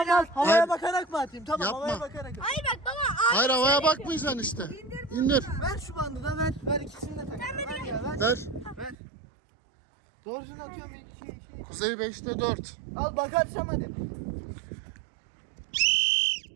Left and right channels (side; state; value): left; drops out; at 9.0 s